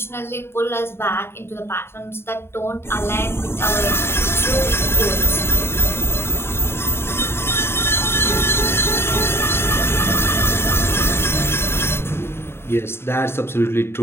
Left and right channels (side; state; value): right; late; 0.12 ms